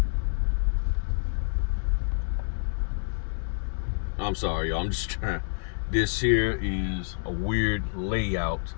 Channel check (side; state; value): right; silent; digital silence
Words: I'm sorry, y'all. I'm just trying. This here is a weird layout.